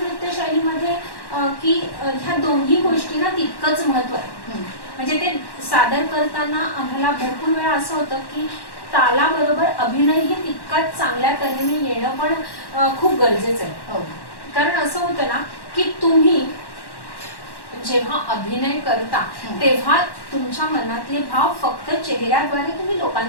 शैलीमध्ये की ह्या दोन्ही गोष्टींना तितकंच महत्व आहे. म्हणजे ते सादर करताना आम्हाला भरपूर वेळा असं होतं की तालाबरोबर अभिनय ही तितकाच चांगल्या तऱ्हेने येणं पण खूप गरजेचं आहे. कारण असं होतं ना की तुम्ही जेव्हा अभिनय करता तेव्हा तुमच्या मनातले भाव फक्त चेहऱ्याद्वारे तुम्ही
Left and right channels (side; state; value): right; late; 1.1 ms